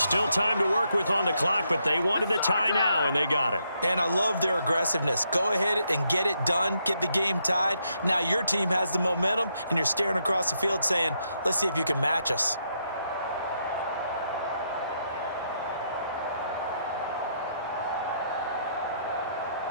time to work with on the clock, but they wanted the tie now, and they got it. And I love their aggressiveness. Go ahead and get it done, get the game tied. Now your team has the momentum, and you're staring across the field saying, let's see if you can match us.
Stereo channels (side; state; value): both; inverted; correlation -0.77